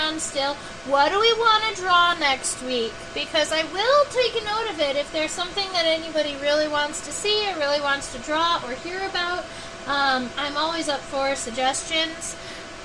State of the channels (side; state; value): both; identical; correlation 1.00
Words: still, what do we want to draw next week? Because I will take a note of it if there's something that anybody really wants to see or really wants to draw or hear about. I'm always up for suggestions.